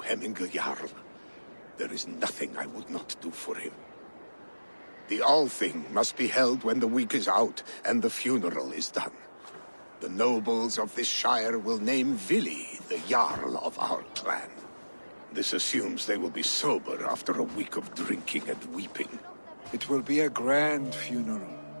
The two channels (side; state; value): both; inverted; correlation -1.00